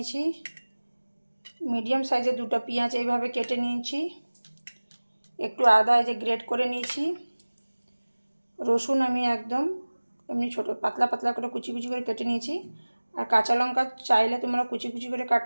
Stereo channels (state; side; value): inverted; both; correlation -1.00